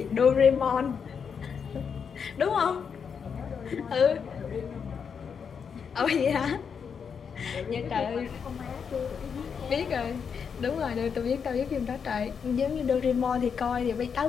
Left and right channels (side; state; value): right; quieter; 6.6 dB